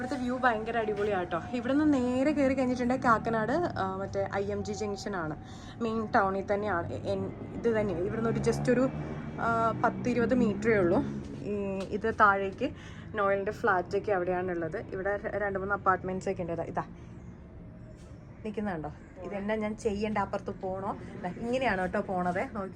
വ്യൂ ഭയങ്കര അടിപൊളിയാട്ടോ. ഇവിടെ നിന്ന് നേരെ കയറി കഴിഞ്ഞിട്ടുണ്ടെങ്കിൽ കാക്കനാട് മറ്റേ IMG ജംഗ്ഷനാണ്, മെയിൻ ടൗണിൽ തന്നെയാണ്. ഇത് തന്നെയാണ് ഇവിടുന്ന് ഒരു ജസ്റ്റ് ഒരു 10-20 മീറ്ററേ ഉള്ളൂ. ഇത് താഴേക്ക് നോയലിൻ്റെ ഫ്ലാറ്റൊക്കെ അവിടെയാണുള്ളത്. ഇവിടെ 2-3 അപ്പാർട്ട്മെൻറ്റ്സ് ഒക്കെ ഉണ്ട്. ഇതാ നിൽക്കുന്നുണ്ടോ? ഇതെന്നാ ഞാൻ ചെയ്യേണ്ട, അപ്പുറത്ത് പോകണോ? ഇങ്ങനെയാണ് കേട്ടോ പോണത്.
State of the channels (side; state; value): both; identical; correlation 1.00